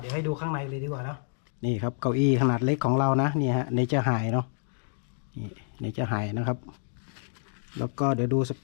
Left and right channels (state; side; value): silent; right; digital silence